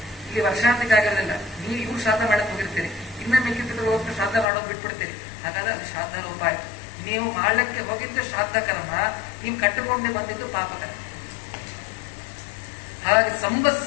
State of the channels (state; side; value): drops out; right; at 4.5 s